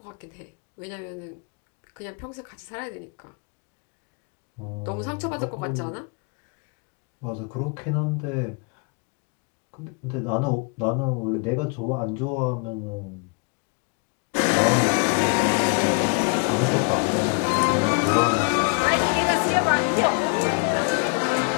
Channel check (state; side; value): quieter; right; 37.1 dB